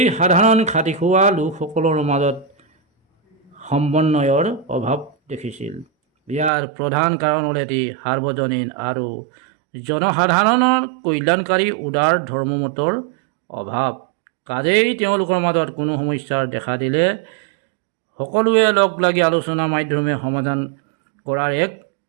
সাধাৰণ খাটি খোৱা লোকসকলৰ মাজত সমন্বয়ৰ অভাৱ দেখিছিল। ইয়াৰ প্ৰধান কাৰণ হ'ল এটি সাৰ্বজনীন আৰু জনসাধাৰণৰ কল্যাণকাৰী উদাৰ ধৰ্মমতৰ অভাৱ। কাজেই তেওঁলোকৰ মাজত কোনো সমস্যাৰ দেখা দিলে সকলোৱে লগ লাগি আলোচনাৰ মাধ্যমে সমাধান কৰাৰ এক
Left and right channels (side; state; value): left; drops out; at 6.5 s